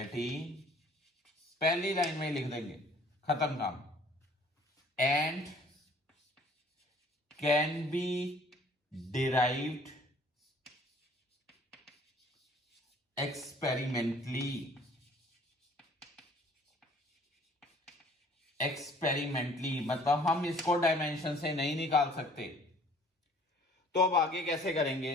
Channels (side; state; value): both; normal; correlation 0.55